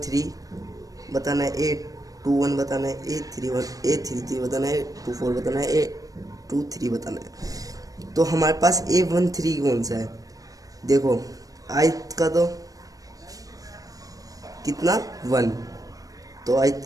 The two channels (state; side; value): late; left; 0.17 ms